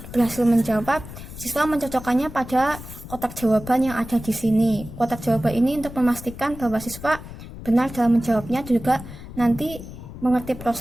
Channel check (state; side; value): noise; left; rumble, 13 dB below the sound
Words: berhasil menjawab, siswa mencocokkannya pada kotak jawaban yang ada di sini. Kotak jawaban ini untuk memastikan bahwa siswa benar dalam menjawabnya, juga nanti mengerti